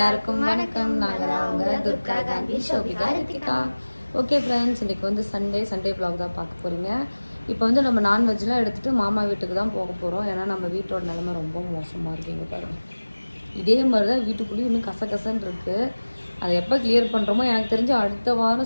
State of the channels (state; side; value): inverted; both; correlation -1.00